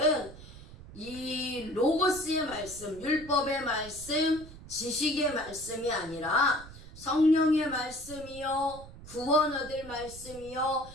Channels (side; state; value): right; noise; rumble, 16 dB below the sound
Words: 이 로고스의 말씀, 율법의 말씀, 지식의 말씀이 아니라 성령의 말씀이요, 구원 얻을 말씀이요,